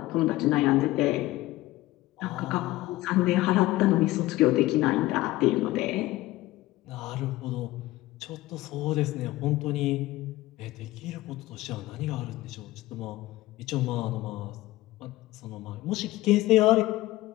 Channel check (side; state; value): right; quieter; 17.7 dB